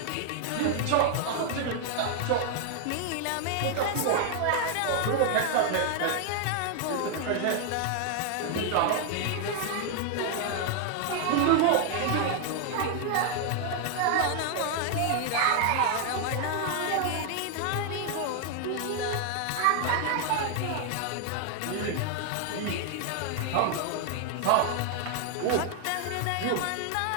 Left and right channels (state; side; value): different; both; correlation 0.00